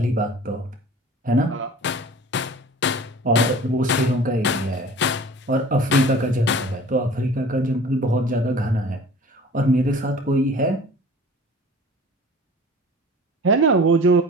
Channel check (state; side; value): normal; both; correlation 0.44